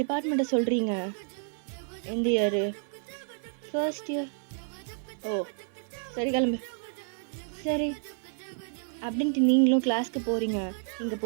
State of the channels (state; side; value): silent; left; 58 dB below the other